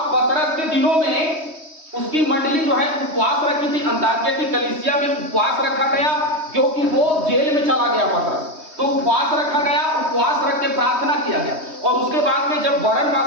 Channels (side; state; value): left; late; 3.2 ms